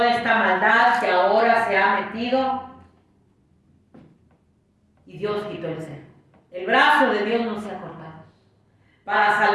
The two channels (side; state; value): both; identical; correlation 1.00